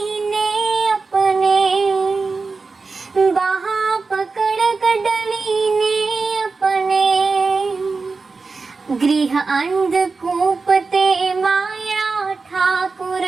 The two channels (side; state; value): left; quieter; 4.3 dB